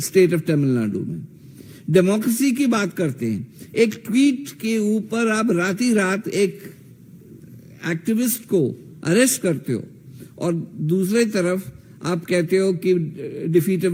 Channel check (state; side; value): identical; both; correlation 1.00